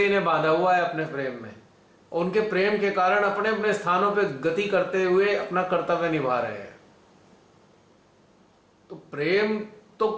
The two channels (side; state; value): both; identical; correlation 1.00